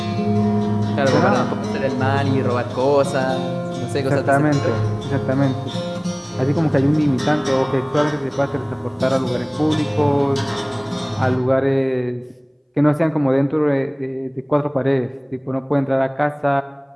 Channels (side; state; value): both; identical; correlation 1.00